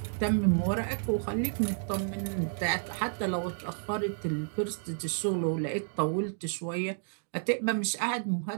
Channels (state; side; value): silent; left; digital silence